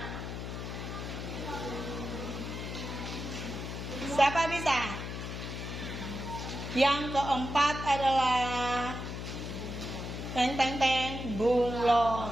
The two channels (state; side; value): noise; left; hum, 6 dB below the sound